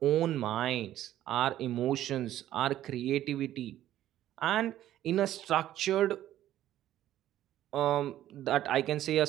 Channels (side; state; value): left; quieter; 12.8 dB